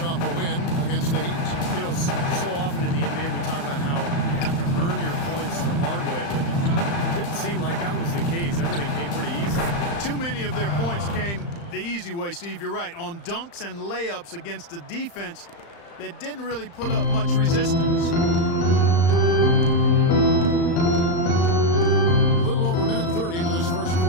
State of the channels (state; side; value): late; right; 35 ms